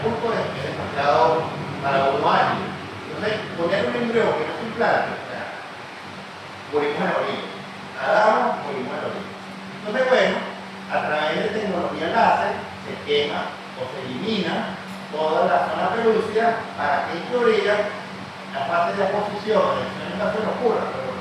es demasiado para uno año. Entonces, poner un embrión que no se implante, morimos en la orilla. Nadamos, morimos en la orilla. Entonces, bueno, a través de tecnología láser se quema o se elimina toda la zona pelúcida para que en teoría la fase de aposición, de la no ocurra, pero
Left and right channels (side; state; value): both; identical; correlation 1.00